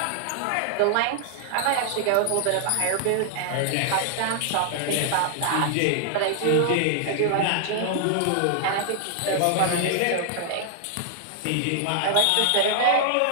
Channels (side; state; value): both; different; correlation 0.00